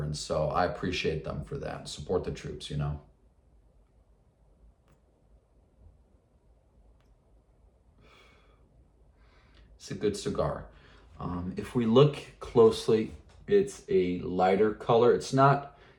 so I appreciate them for that. Support the troops, you know. It's a good cigar. If we look closely, it's a lighter color. It's not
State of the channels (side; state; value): both; identical; correlation 1.00